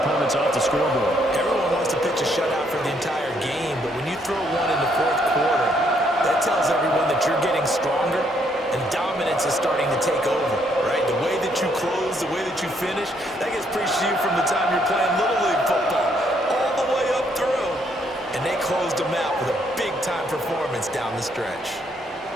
off the scoreboard. Everyone wants to pitch a shutout for the entire game, but when you throw one in the fourth quarter, that tells everyone that you're getting stronger and dominance is starting to take over, right? The way that you close, the way that you finish, that gets preached to you from the time you're playing Little League football all the way up through. And they closed them out with a big-time performance down the stretch.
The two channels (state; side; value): normal; both; correlation 0.71